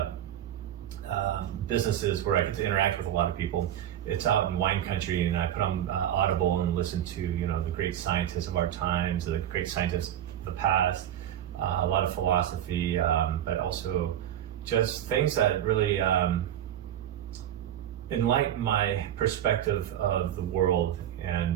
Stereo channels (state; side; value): quieter; left; 11.1 dB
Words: businesses where I get to interact with a lot of people, it's out in wine country, and I put on Audible and listen to the great scientists of our times, the great scientists the past, a lot of philosophy, but also just things that really enlighten my perspective of the world.